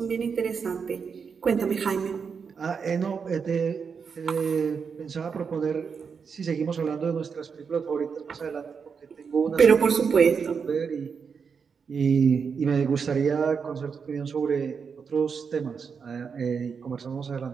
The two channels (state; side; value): quieter; left; 6.0 dB